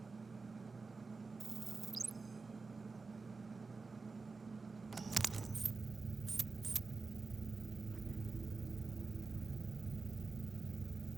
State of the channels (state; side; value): quieter; left; 4.2 dB